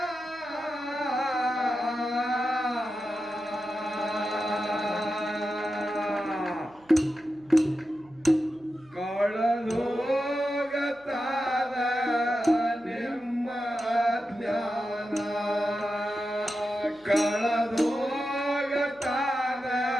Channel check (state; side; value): noise; right; hum, 29 dB below the sound